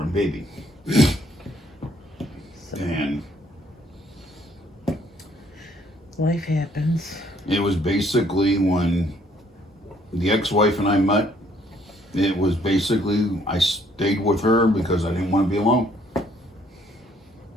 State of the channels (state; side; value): normal; both; correlation 0.65